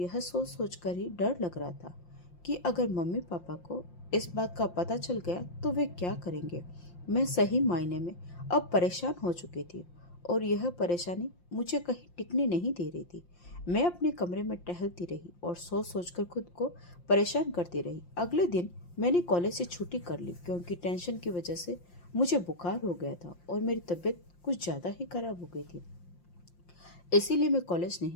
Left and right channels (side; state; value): right; late; 5.7 ms